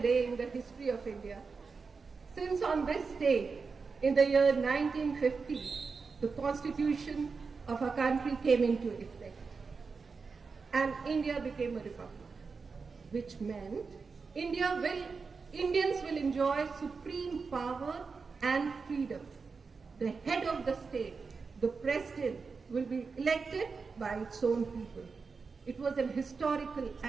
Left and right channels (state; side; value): quieter; left; 4.8 dB